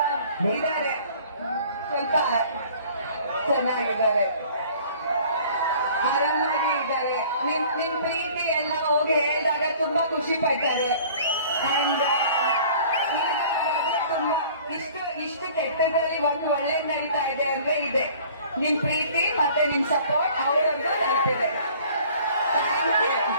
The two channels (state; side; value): inverted; both; correlation -0.50